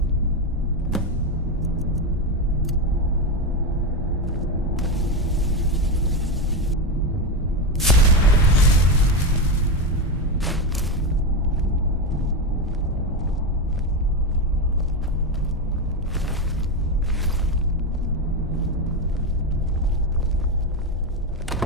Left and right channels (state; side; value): normal; both; correlation 0.12